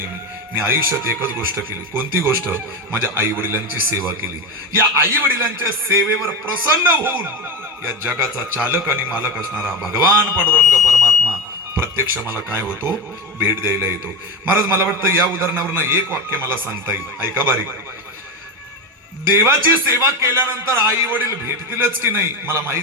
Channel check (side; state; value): both; normal; correlation 0.18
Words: मी आयुष्यात एकच गोष्ट केली. कोणती गोष्ट, माझ्या आई वडिलांची सेवा केली. या आई वडिलांच्या सेवेवर प्रसन्न होऊन या जगाचा चालक आणि मालक असणारा भगवान पांडुरंग परमात्मा प्रत्यक्ष मला काय होतो, भेट द्यायला येतो. महाराज मला वाटतं या उदाहरणावरनं एक वाक्य मला सांगता येईल. ऐका बारीक. देवाची सेवा केल्यानंतर आई वडील भेटतीलच की नाही मला